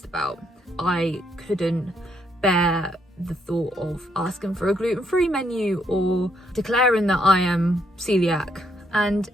about. I couldn't bear the thought of asking for a gluten-free menu or declaring that I am celiac. And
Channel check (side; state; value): both; normal; correlation 0.74